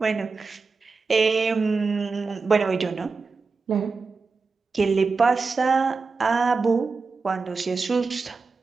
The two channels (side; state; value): left; quieter; 4.4 dB